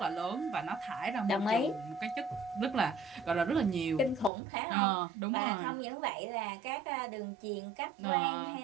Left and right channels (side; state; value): left; drops out; at 4.3 s